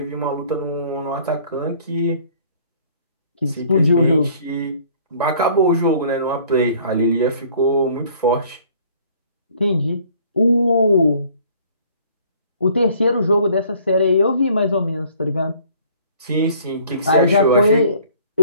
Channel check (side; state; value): both; inverted; correlation -0.55